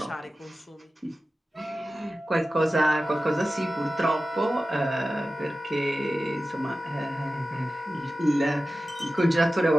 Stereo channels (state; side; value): normal; both; correlation 0.94